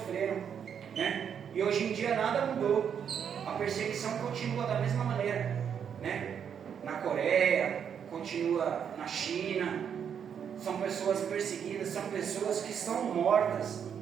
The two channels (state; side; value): quieter; left; 7.9 dB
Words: né? E hoje em dia nada mudou. A perseguição continua da mesma maneira, né? Na Coreia, continua na China. São pessoas perseguidas, são pessoas que estão mortas.